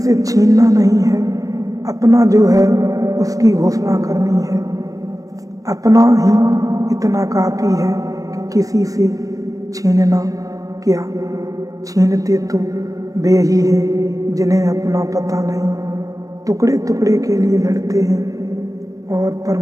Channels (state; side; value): late; left; 0.16 ms